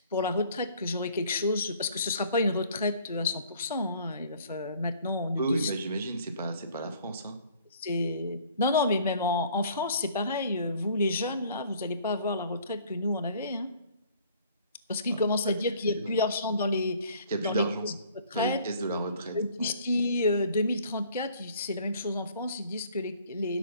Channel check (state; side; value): inverted; both; correlation -0.55